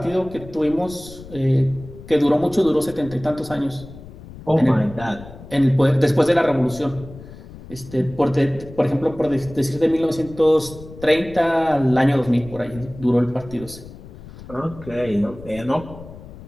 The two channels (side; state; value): left; noise; rumble, 16 dB below the sound